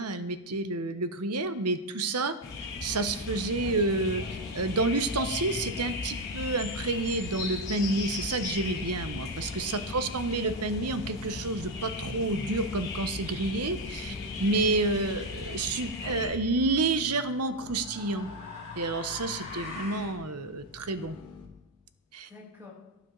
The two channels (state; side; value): normal; both; correlation 0.07